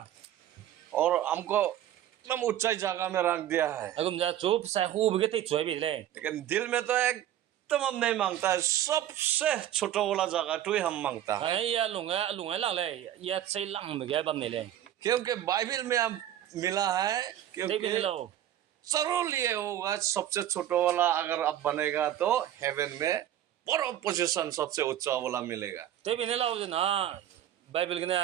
और हमको एकदम ऊंचाई जगह में रख दिया है। agum ja chu sa hu bi ge te choi bi lai लेकिन दिल में तो एकदम हम नहीं मांगता है, सबसे छोटा वाला जगह तो ही हम मांगता है। ai ya lunga lang lai ya chei lang ba ge bam ne lai क्योंकि बाइबल में हम मिला है, dei bi क्योंकि lo जरूर ये होगा सबसे छोटा वाला अगर अब बनेगा तो हेवन में बड़ा पोजीशन सबसे ऊंचा वाला मिलेगा। dei bi ne lo na bible ge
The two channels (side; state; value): left; quieter; 11.8 dB